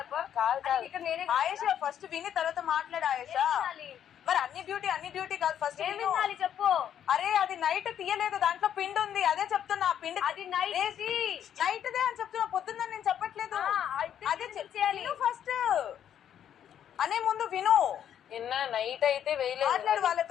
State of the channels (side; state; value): right; quieter; 9.7 dB